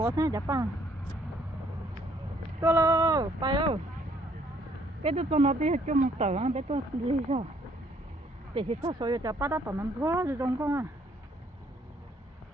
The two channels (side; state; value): both; normal; correlation 0.65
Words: thế chắc pa. Tôi lo, bay ơi. Cái tôi cho nó đi cho một tờ, cái tôi đi sao? Để thì sao rồi cho ba đã tập nằm thua rồi trong con à.